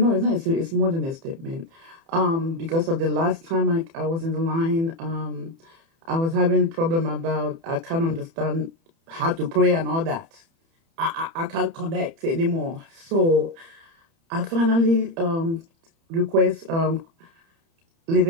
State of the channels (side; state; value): left; late; 30 ms